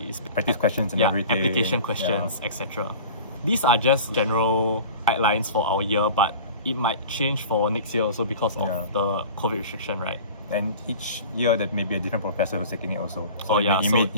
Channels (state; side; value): inverted; both; correlation -0.39